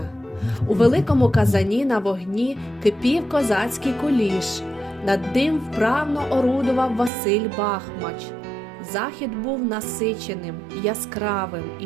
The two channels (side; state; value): left; drops out; at 7.1 s